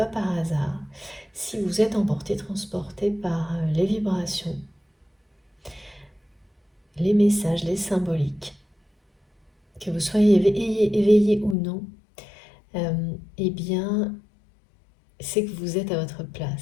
par hasard. Si vous êtes emporté, transporté par les vibrations, les messages, les symboliques, que vous soyez éveillé ou non, eh bien, c'est que vous êtes à votre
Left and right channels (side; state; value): right; drops out; at 11.6 s